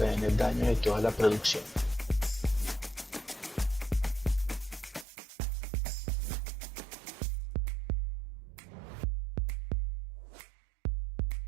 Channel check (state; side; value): drops out; left; at 5.1 s